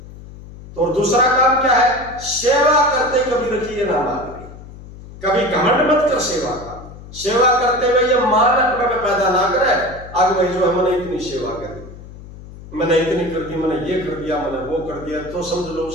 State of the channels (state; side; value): noise; left; hum, 16 dB below the sound